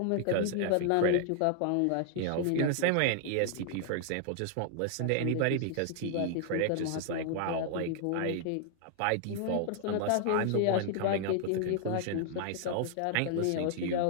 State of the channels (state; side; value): different; both; correlation 0.00